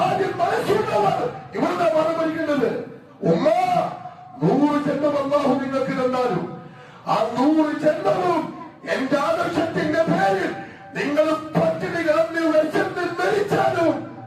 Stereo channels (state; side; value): identical; both; correlation 1.00